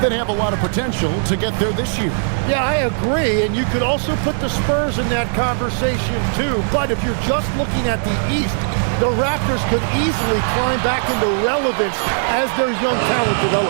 have a lot of potential to get there this year. Yeah, I agree, and you could also put the Spurs in that conversation too. But if you're just looking at the East, the Raptors could easily climb back into relevance as their young talent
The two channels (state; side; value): silent; left; 67 dB below the other